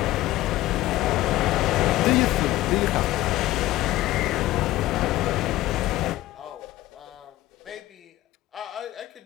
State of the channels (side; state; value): right; quieter; 16.1 dB